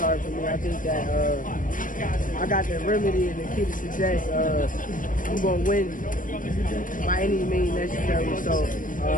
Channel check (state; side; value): late; right; 0.39 ms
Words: for me. I think that I got the remedy and the key to success. I'm going to win by any means necessary. So